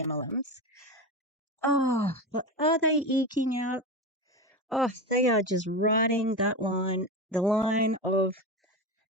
MLMs. Oh, but are they eking out? Oh, they are just riding that line, the line of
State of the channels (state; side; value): normal; both; correlation 0.21